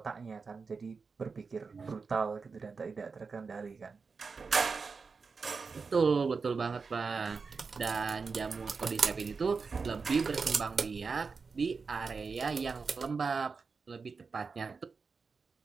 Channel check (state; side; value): quieter; left; 4.9 dB